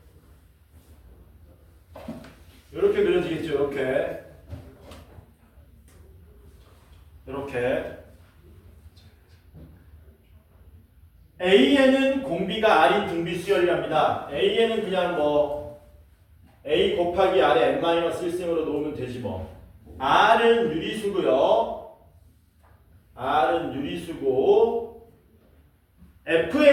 이렇게 그려지겠죠. 이렇게. 이렇게 AN은 공비가 R인 등비 수열이랍니다. AN은 그냥 뭐 A 곱하기 R에 n-1승으로 놓으면 되지 뭐. R은 유리수고요. R은 유리수고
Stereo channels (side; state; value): both; identical; correlation 1.00